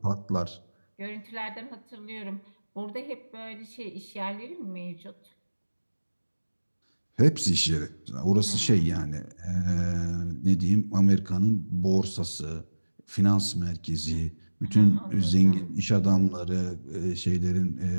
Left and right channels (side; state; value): both; inverted; correlation -1.00